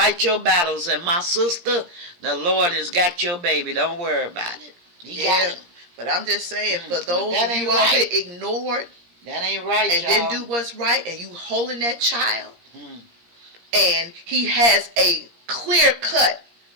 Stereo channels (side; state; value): left; late; 17 ms